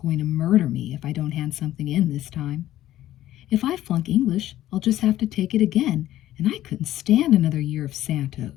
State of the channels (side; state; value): right; quieter; 13.7 dB